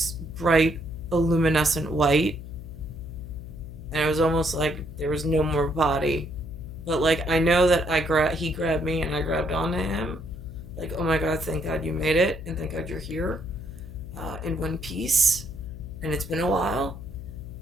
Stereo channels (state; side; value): noise; left; hum, 11 dB below the sound